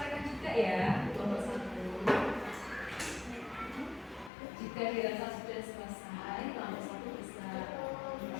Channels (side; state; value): right; drops out; at 4.3 s